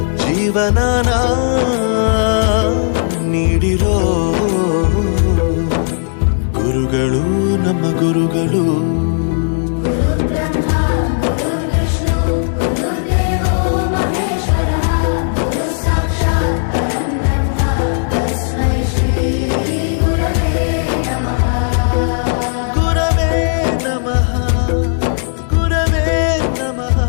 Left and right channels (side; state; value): right; silent; digital silence